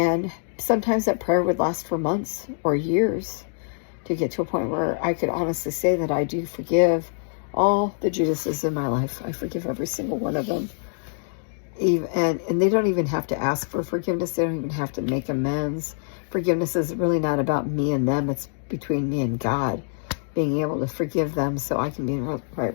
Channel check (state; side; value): silent; right; digital silence